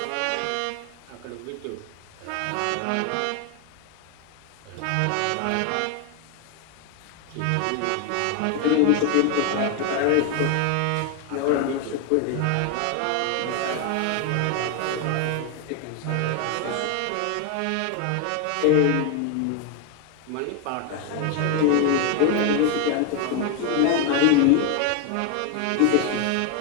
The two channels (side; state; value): both; different; correlation 0.01